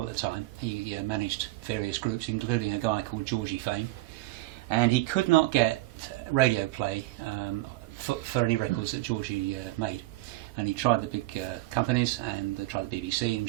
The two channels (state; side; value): quieter; left; 19.0 dB